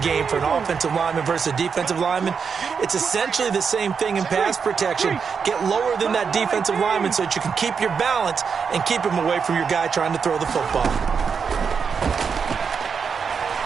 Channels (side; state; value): left; quieter; 6.1 dB